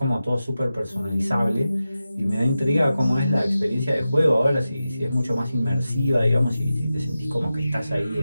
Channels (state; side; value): inverted; both; correlation -0.93